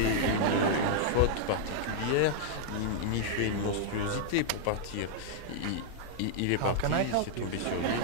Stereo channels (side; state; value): both; different; correlation -0.01